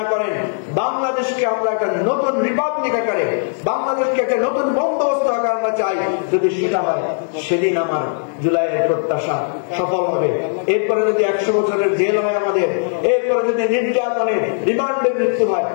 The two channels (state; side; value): silent; right; 59 dB below the other